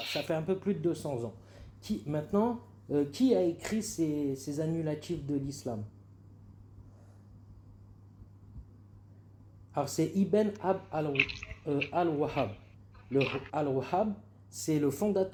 ça fait un peu plus de 200 ans. Maintenant, qui a écrit ces annulatifs de l'islam? Alors c'est Ibn al-Wahhab. Le al-Wahhab, c'est le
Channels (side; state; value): both; identical; correlation 1.00